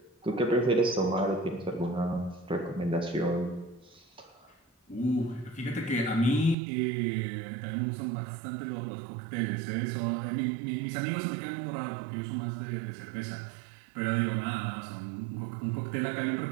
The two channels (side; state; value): left; drops out; at 6.6 s